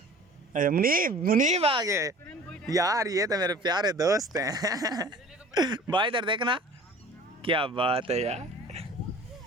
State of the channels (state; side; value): normal; both; correlation 0.45